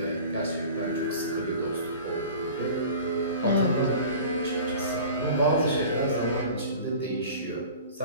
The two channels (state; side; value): inverted; both; correlation -0.41